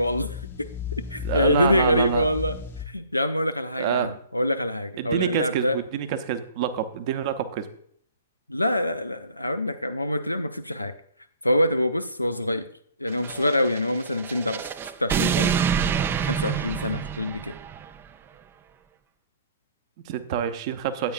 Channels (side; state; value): both; inverted; correlation -0.54